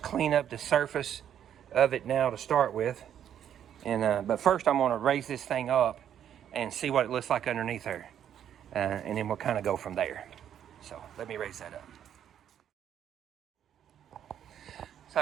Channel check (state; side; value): quieter; left; 9.7 dB